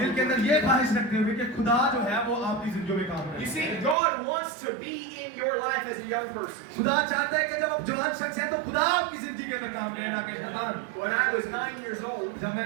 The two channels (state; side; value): drops out; left; at 4.0 s